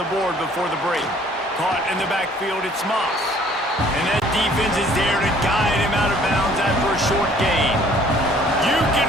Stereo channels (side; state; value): both; normal; correlation 0.57